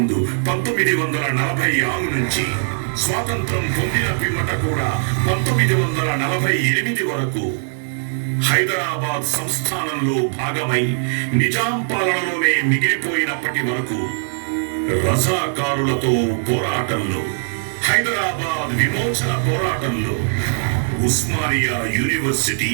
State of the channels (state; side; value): silent; left; digital silence